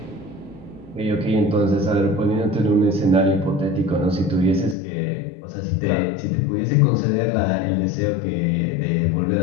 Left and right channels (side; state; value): right; drops out; at 4.8 s